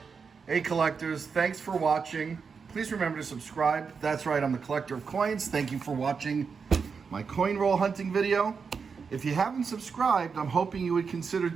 Hey, collectors. Thanks for watching. Please remember to subscribe. That's right, I'm the collector of coins. Thank you for watching my coin roll hunting video. If you haven't subscribed, I'm hoping you would consider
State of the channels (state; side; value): quieter; left; 5.6 dB